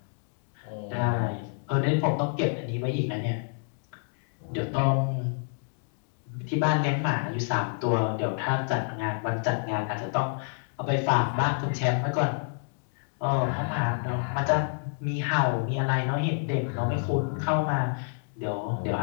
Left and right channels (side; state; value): right; silent; 59 dB below the other